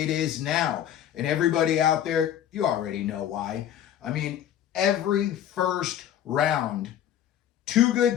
it is now. And everybody out there, you already know why. I mean, every first round, two good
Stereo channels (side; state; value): right; quieter; 10.6 dB